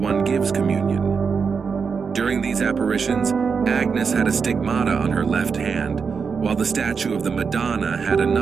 gives communion. During these apparitions, Agnes had a stigmata on her left hand, while the statue of the Madonna had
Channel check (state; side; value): quieter; left; 5.7 dB